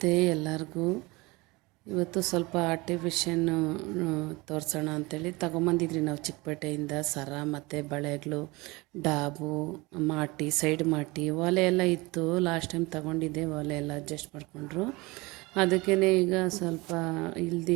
ಎಲ್ಲರಿಗೂ. ಇವತ್ತು ಸ್ವಲ್ಪ ಆರ್ಟಿಫಿಷಿಯನ್ನು ತೋರಿಸೋಣ ಅಂಥೇಳಿ ತಗೊಂಬಂದಿದ್ರಿ ನಾವು ಚಿಕ್ಕಪೇಟೆಯಿಂದ ಸರ ಮತ್ತು ಬಳೆಗಳು, ಡಾಬು, ಮಾಟಿ, ಸೈಡ್ ಮಾಟಿ, ಒಲೆ ಎಲ್ಲ ಇತ್ತು. ಲಾಸ್ಟ್ ಟೈಮ್ ತಗೊಂಡಿದ್ದೆ, ಒಲೆ ಎಲ್ಲ ಅಡ್ಜಸ್ಟ್ ಮಾಡಿಕೊಂಡ್ರು. ಅದಕ್ಕೇ ಈಗ ಸ್ವಲ್ಪ ಇಲ್ದು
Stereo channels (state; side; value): quieter; left; 23.6 dB